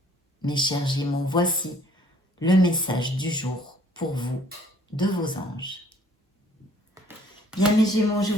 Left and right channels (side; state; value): both; normal; correlation 0.58